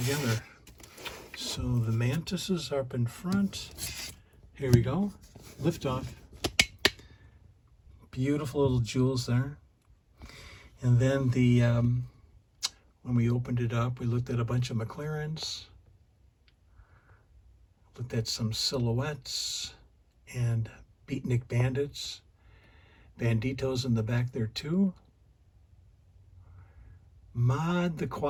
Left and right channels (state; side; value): identical; both; correlation 1.00